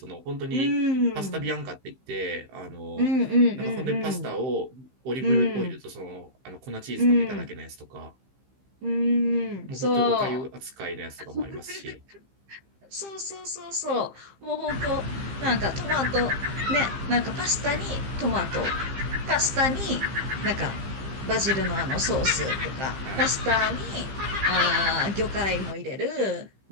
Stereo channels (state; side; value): late; left; 15 ms